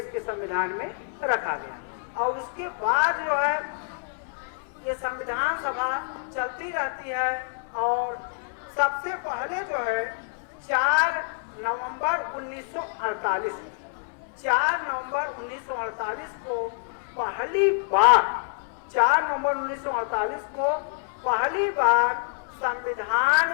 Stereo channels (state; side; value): silent; right; 60 dB below the other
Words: के संविधान में रखा गया। और उसके बाद जो है ये संविधान सभा चलती रहती है। और सबसे पहले जो है 4 नवंबर 1948 को पहली बार 4 नवंबर 1948 को पहली बार